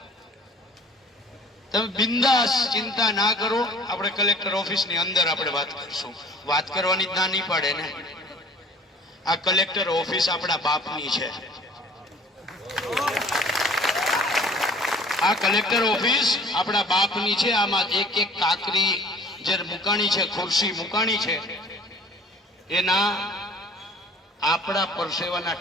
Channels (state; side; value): normal; both; correlation 0.49